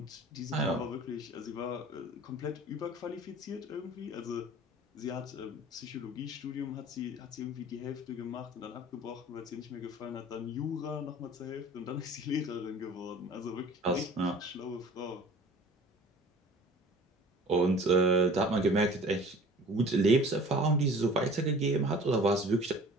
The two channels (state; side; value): normal; both; correlation 0.45